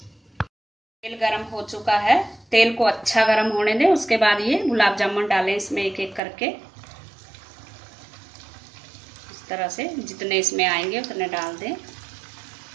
तेल गरम हो चुका है, तेल को अच्छा गरम होने दें। उसके बाद ये गुलाब जामुन डालें इसमें एक एक करके। इस तरह से जितने इसमें आएंगे उतने डाल दें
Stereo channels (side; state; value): left; drops out; at 6.2 s